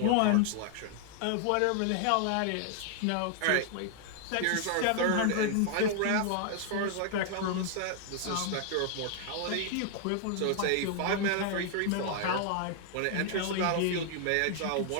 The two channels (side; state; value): both; different; correlation 0.00